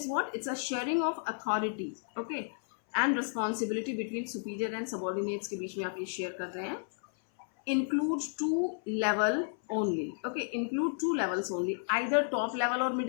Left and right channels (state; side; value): silent; right; 56 dB below the other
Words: what? It's a sharing of authority. Okay. And responsibility between superior and subordinates के बीच में आप ये share कर रहे हैं. Include two level only. Okay, include two levels only. Either top level or